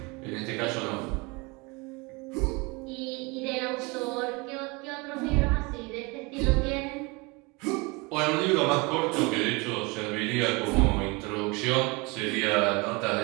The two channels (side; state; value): left; quieter; 27.2 dB